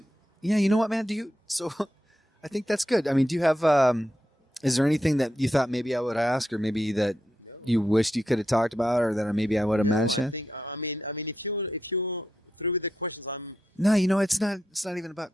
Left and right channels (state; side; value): normal; both; correlation 0.85